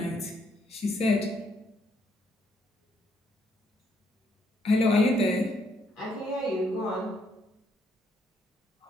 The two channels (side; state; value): both; normal; correlation 0.72